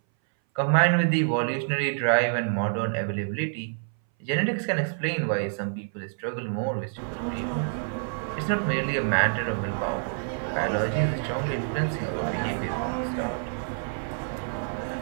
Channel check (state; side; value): silent; left; 60 dB below the other